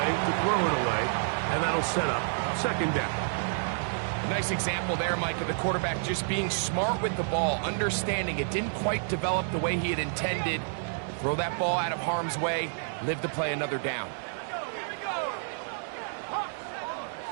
to throw it away, and that'll set up 2nd down. Nice example there, Mike, of the quarterback just being smart with the ball, understanding it didn't quite develop the way he had intended. Throw that ball out of harm's way, live to play another down.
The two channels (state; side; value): silent; left; 58 dB below the other